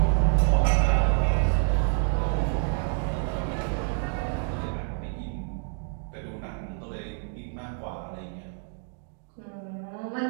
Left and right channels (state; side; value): silent; left; 56 dB below the other